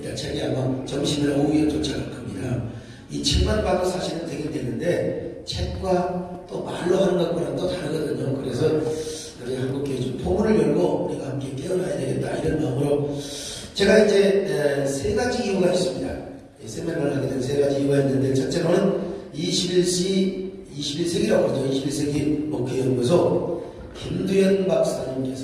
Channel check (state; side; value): identical; both; correlation 1.00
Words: 책이 아마 점심이나 오후에 도착할 겁니다. 이 책만 봐도 사실은 되긴 되는데 책과 또 말로 하는 것과는 또 다르거든요. 그래서 우리 한국교회 좀 포문을 열고 우리가 함께 깨어나야 되겠다 이런 마음으로 제가 이제 세 가지 이유가 있습니다. 세미나를 하게 된 세 가지 이유가 있는데 첫째로는 21세기라고 그러죠. 21세기 목회연구소 김두현